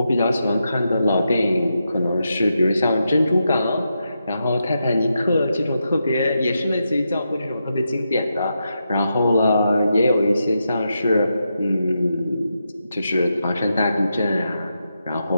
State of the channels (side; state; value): both; inverted; correlation -0.86